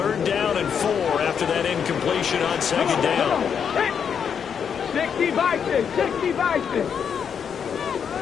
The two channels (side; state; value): right; quieter; 7.3 dB